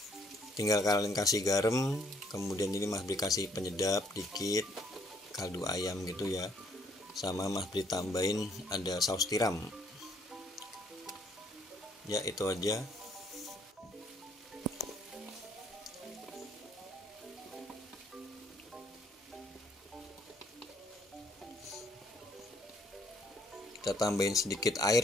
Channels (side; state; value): both; normal; correlation 0.66